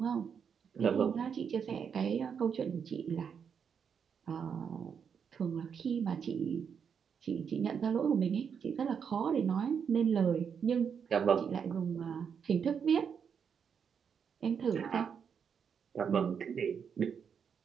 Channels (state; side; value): quieter; left; 7.0 dB